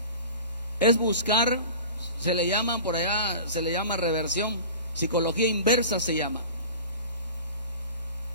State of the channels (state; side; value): inverted; both; correlation -0.37